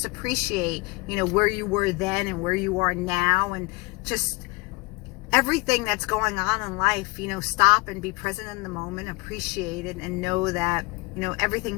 appreciate, where you were then and where you are now, and just everything that's going on in life. Stop and be present in the moment, appreciate it, and know that,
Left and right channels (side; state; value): right; quieter; 26.5 dB